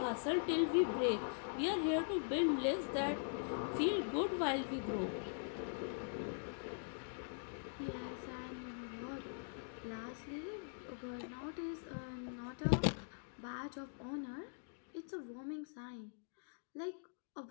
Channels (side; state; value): right; silent; digital silence